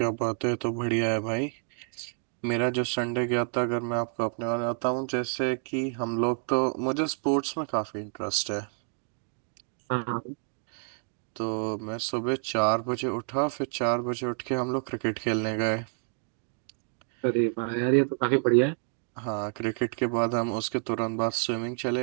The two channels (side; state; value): left; silent; 57 dB below the other